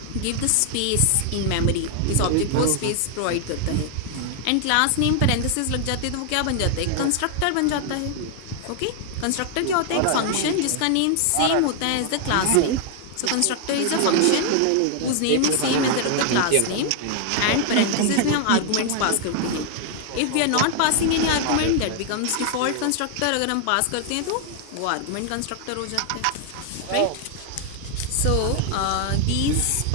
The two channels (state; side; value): different; both; correlation 0.00